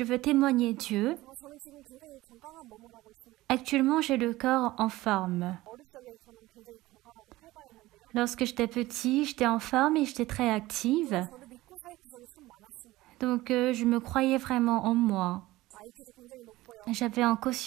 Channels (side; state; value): left; quieter; 18.0 dB